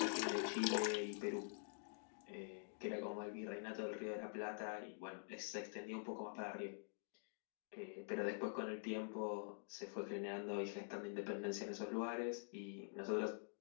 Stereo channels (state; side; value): silent; right; digital silence